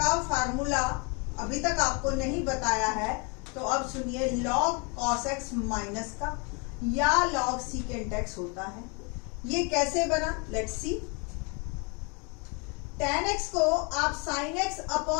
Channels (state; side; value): quieter; right; 33.0 dB